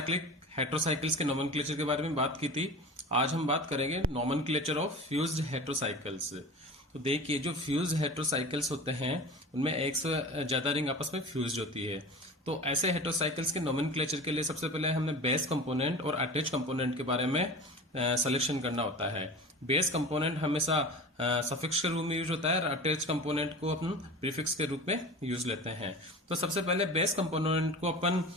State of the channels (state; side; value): normal; both; correlation 0.35